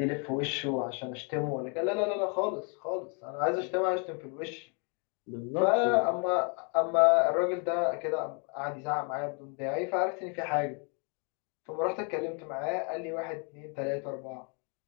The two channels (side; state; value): right; quieter; 37.3 dB